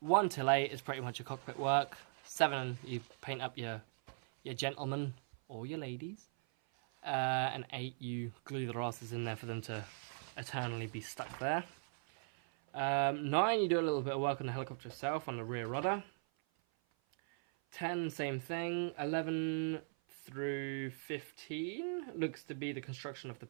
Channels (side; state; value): left; silent; 51 dB below the other